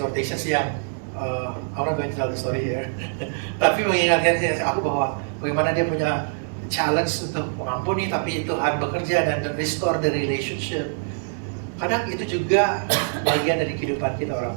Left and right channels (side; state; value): left; silent; digital silence